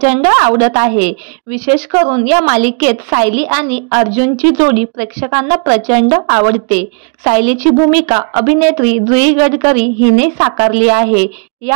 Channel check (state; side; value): quieter; left; 38.6 dB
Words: आवडत आहे। विशेष करून या मालिकेत सायली आणि अर्जुनची जोडी प्रेक्षकांना प्रचंड आवडते। सायलीची भूमिका अभिनेत्री जुई गडकरी हिने साकारली आहे।